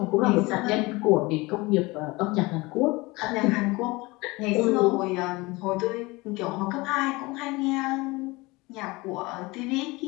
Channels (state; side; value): quieter; right; 23.1 dB